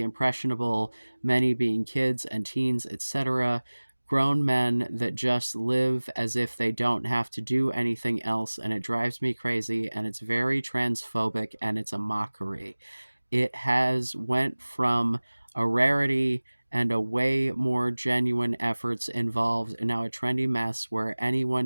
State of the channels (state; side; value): inverted; both; correlation -1.00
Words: impressionable, many being kids and teens, etc. Grown men that just live as if they don't have to do anything else, and it drives me crazy, and it's very transphobic, and it's a mockery. It has went from a rarity and a way more genuine efforts involved, and now a trendy mess where